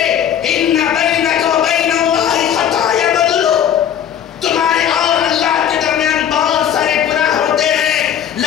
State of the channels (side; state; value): right; quieter; 9.5 dB